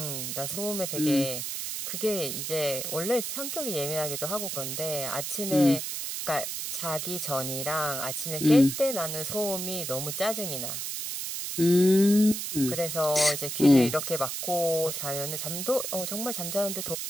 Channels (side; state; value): right; noise; hiss, 4 dB below the sound